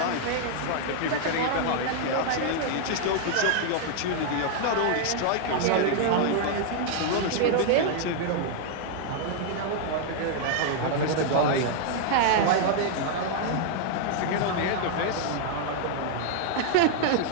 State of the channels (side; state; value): both; different; correlation 0.00